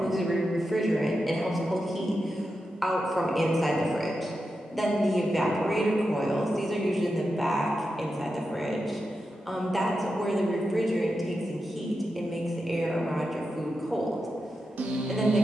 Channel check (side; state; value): both; normal; correlation 0.89